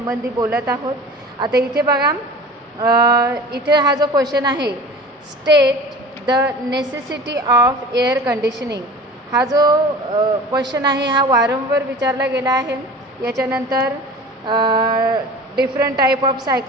बोलत आहोत। आता इथे बघा, इथे हा जो क्वेश्चन आहे, state the necessity of air conditioning, हा जो क्वेश्चन आहे हा वारंवार विचारला गेला आहे। याच्यानंतर डिफरंट टाईप ऑफ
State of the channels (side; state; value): both; normal; correlation 0.39